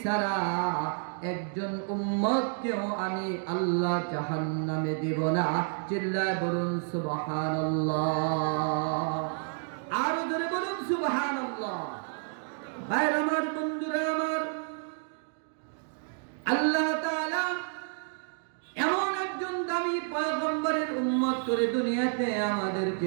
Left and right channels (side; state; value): left; silent; 56 dB below the other